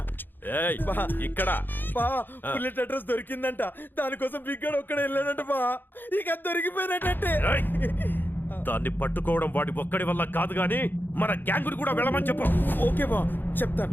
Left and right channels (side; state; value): right; late; 0.093 ms